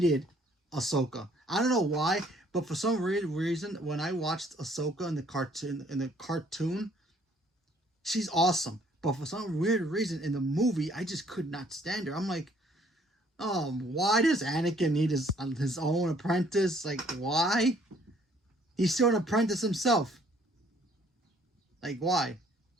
Ahsoka. I don't know why, but for some weird reason, when I watched Ahsoka in the cartoon, she's awesome. But for some weird reason in the movie, I just could not stand her. I'm like, why does Anakin need his own apprentice? Like, why? He's still an apprentice himself. Like, why?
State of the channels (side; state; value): both; normal; correlation 0.61